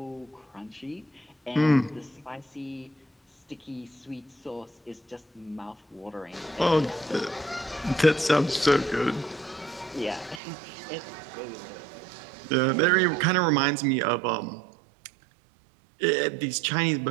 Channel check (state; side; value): drops out; left; at 10.4 s